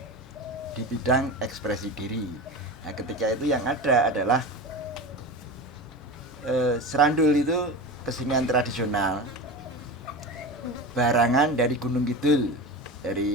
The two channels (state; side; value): normal; both; correlation 0.27